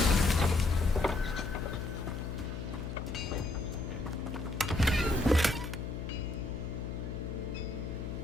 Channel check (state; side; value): noise; left; hum, 6 dB below the sound